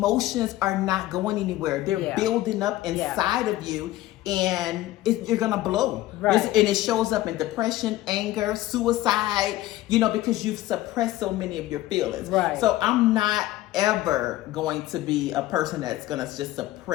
are not going anywhere. They're building up inside of you, and you're gonna blow. And it shows up in depression, anger, suicide, because you've suppressed so many of your feelings. So I'm not ever going to be a person that's gonna just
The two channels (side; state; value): right; quieter; 15.8 dB